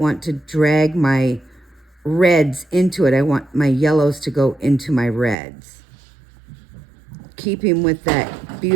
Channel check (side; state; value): left; drops out; at 5.4 s